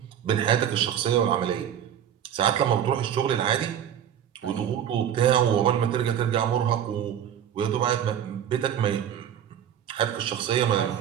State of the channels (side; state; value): left; quieter; 9.7 dB